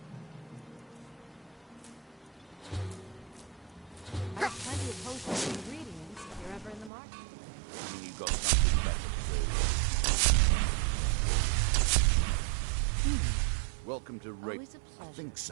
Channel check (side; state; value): left; drops out; at 6.9 s